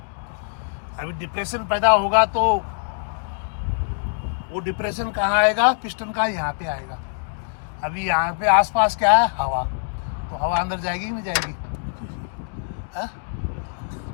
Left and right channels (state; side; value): silent; right; digital silence